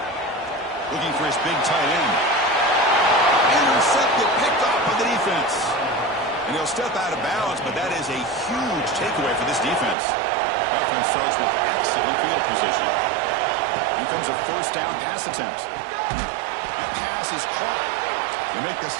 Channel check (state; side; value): drops out; left; at 10.0 s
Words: Looking for his big tight end. Intercepted, picked off by the defense. And he'll step out of bounds, but that is a huge takeaway for this defense. Offense starts with excellent field position. Here comes a 1st down pass attempt. That pass is caught. They make the